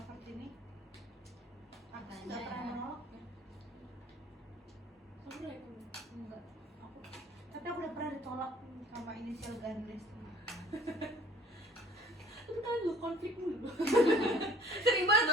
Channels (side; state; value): both; normal; correlation 0.53